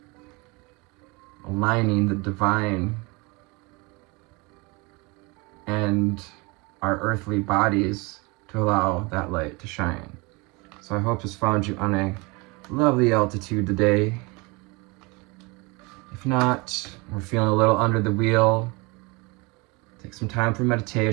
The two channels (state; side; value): quieter; left; 27.0 dB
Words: aligning the divine and our earthly bodies to allow that light to shine. So I hope this found you on a lovely altitude today. If not, we're feeling a little under the wheel, take some time for